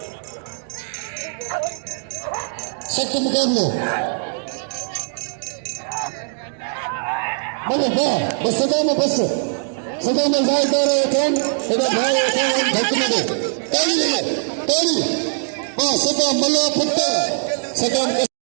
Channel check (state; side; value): silent; left; digital silence